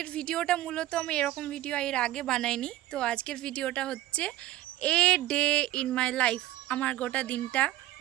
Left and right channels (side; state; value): left; quieter; 15.3 dB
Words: ভিডিওটা মূলত আমি এরকম ভিডিও এর আগে বানাইনি। তো আজকের ভিডিওটা হচ্ছে a day in my life, আমার গোটা দিনটা